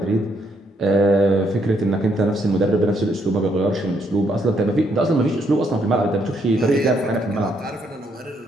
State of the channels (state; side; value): normal; both; correlation 0.74